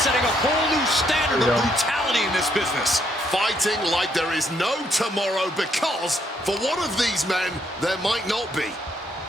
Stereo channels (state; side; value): normal; both; correlation 0.72